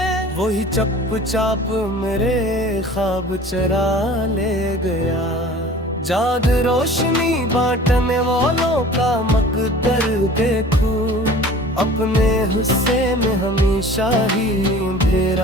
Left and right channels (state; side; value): normal; both; correlation 0.44